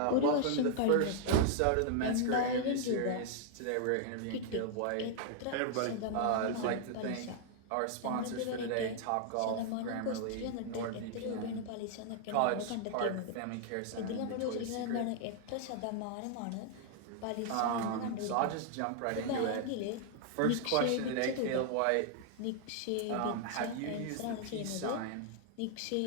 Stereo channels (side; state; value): both; different; correlation 0.00